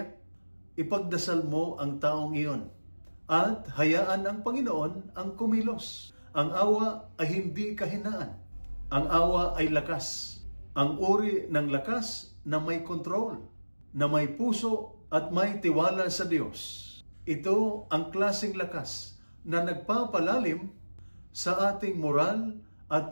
ipagdasal mo ang taong iyon at hayaan ang Panginoon ang kumilos. Ang awa ay hindi kahinaan. Ang awa ay lakas. Ang uri ng lakas na may kontrol, na may puso at may tiwala sa Diyos. Ito ang klaseng lakas na nagpapalalim sa ating moral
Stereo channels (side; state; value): both; inverted; correlation -1.00